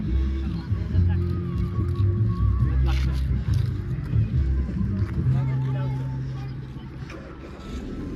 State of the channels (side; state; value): both; identical; correlation 1.00